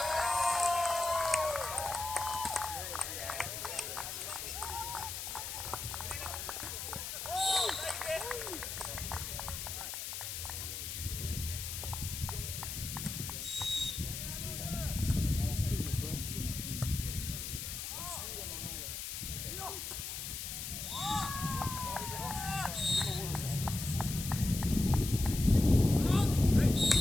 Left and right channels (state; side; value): noise; left; hiss, 6 dB below the sound